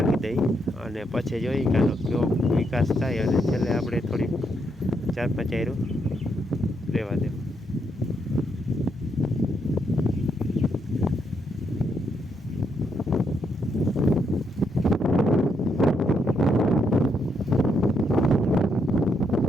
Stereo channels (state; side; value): normal; both; correlation 0.77